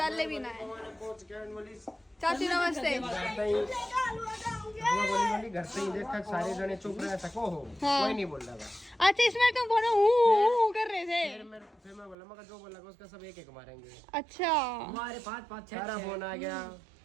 ले भी ना है। चाची नमस्ते। घर पे ही देख सारे जने चुप रहे सको हो। हाँ। कोई नहीं बोल रहा था। अच्छा इसमें तुम बोलो हूँ कर रहे थे। फिर मैं बोला मगर जो बोला उसका सब एक मारेंगे। अच्छा हमारे 5 6 सारा फोन आ गया।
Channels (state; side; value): drops out; left; at 12.2 s